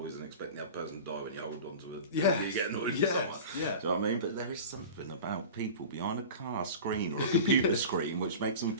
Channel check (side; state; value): both; inverted; correlation -0.35